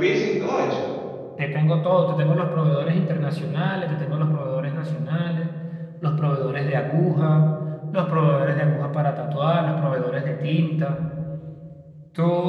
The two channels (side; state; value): both; identical; correlation 1.00